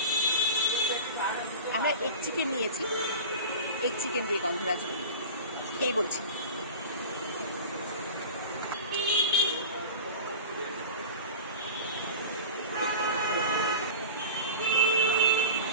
আমরা এগ চিকেন নিয়েছি, এগ চিকেন দিয়ে গন্ধরাজ রোল খেয়ে বলছি।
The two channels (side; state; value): both; inverted; correlation -0.32